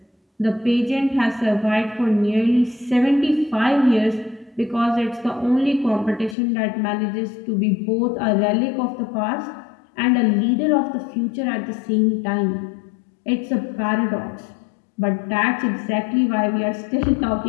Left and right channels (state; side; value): drops out; right; at 6.4 s